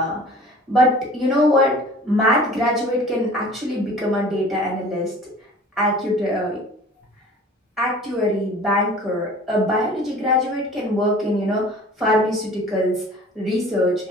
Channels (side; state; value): both; normal; correlation 0.45